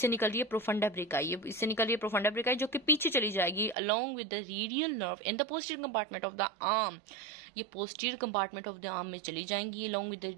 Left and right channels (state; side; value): drops out; left; at 3.8 s